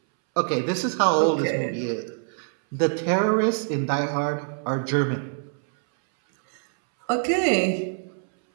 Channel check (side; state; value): left; silent; 62 dB below the other